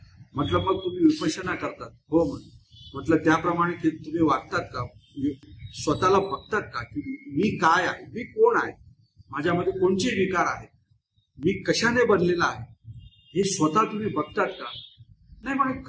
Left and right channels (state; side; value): identical; both; correlation 1.00